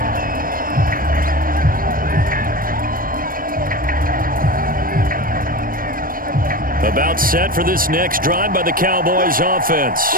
About set for this next drive by the Cowboys offense.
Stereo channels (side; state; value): left; late; 0.41 ms